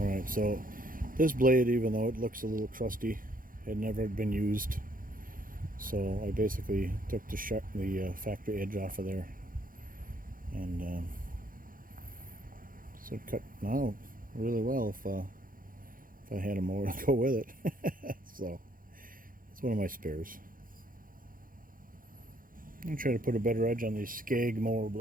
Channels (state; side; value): late; left; 0.40 ms